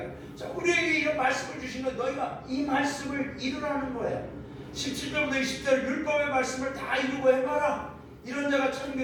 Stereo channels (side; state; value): both; identical; correlation 1.00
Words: 자, 우리에게 이런 말씀을 주신 건 너희가 이 말씀을 이루라는 거야. 17절부터 20절 율법의 말씀을 다 이루고 해봐라. 이런 자가